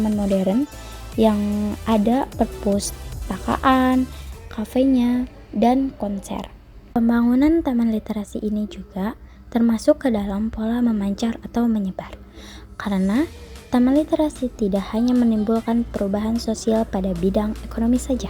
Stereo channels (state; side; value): identical; both; correlation 1.00